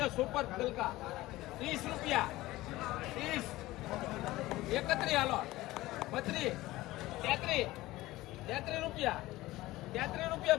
સુપર ગલકા 30 રૂપિયા 30 31 હાલો 32 33 રૂપિયા 33 રૂપિયા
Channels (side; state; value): right; quieter; 17.9 dB